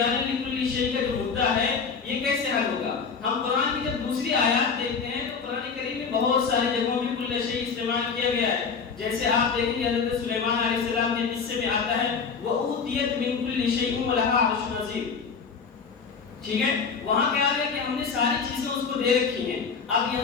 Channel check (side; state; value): right; quieter; 5.6 dB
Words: لکل شیء کا جو مدعا ہے یہ کیسے حل ہوگا. ہم قرآن کی جب دوسری آیات دیکھتے ہیں تو قرآن کریم میں بہت ساری جگہوں میں کل شیء استعمال کیا گیا ہے. جیسے آپ دیکھیں گے حضرت سلیمان علیہ السلام کے قصے میں آتا ہے وَأُوتِيَتْ مِن كُلِّ شَيْءٍ وَلَهَا عَرْشٌ عَظِيمٌ. ٹھیک ہے، وہاں کیا ہے کہ ہم نے ساری چیزیں اس کو دے رکھی ہیں. اب